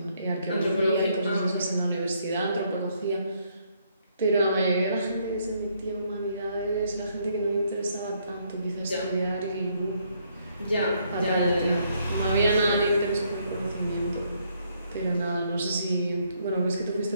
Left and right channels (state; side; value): inverted; both; correlation -0.71